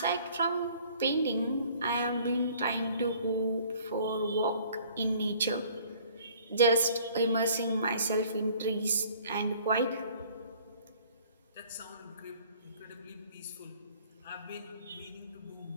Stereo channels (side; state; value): both; inverted; correlation -0.54